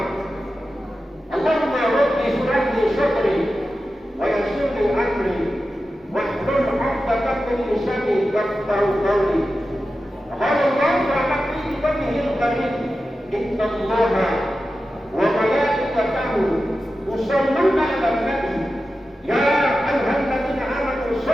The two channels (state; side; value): normal; both; correlation 0.92